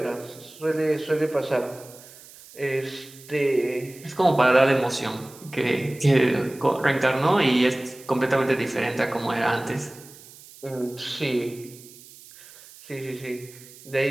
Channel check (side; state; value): right; noise; hiss, 20 dB below the sound